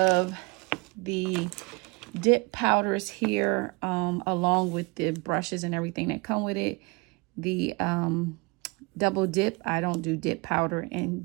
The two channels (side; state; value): left; quieter; 28.0 dB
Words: the dip powders here, along with the brushes and everything that come with it. The double dip, I don't do dip powder, and